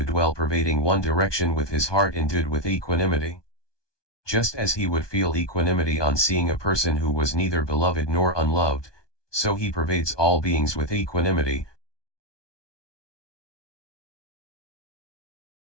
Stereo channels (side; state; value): right; late; 1.2 ms